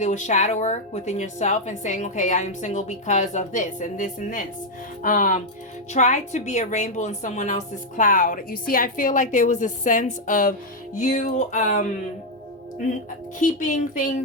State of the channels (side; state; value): both; normal; correlation 0.01